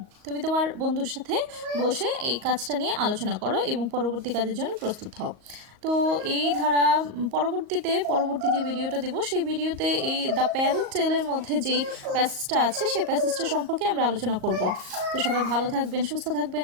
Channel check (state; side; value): late; left; 38 ms